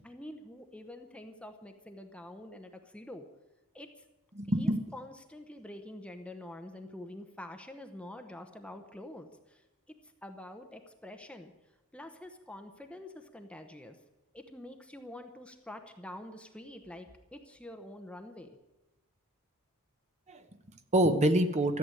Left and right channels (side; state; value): both; normal; correlation 0.59